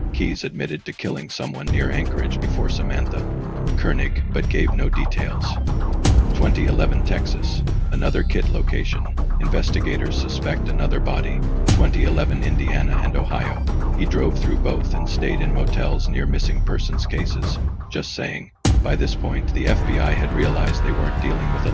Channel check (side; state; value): both; identical; correlation 1.00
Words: Keyes admitted to killing someone near Anchorage before Samantha Koenig, but gave no details. 2011 Texas. Another kit location. Investigators suspect another body. 2011 Indiana and Ohio. He drove through both and stayed in motels near missing persons cases. Just saying. By this point, the FBI had realized they weren't dealing with